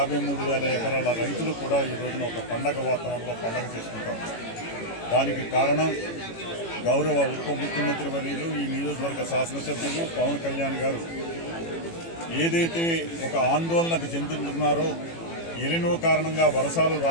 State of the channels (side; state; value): right; late; 18 ms